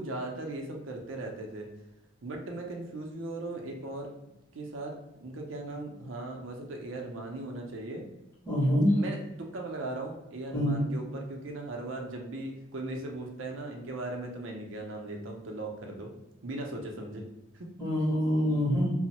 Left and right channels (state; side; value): normal; both; correlation 0.69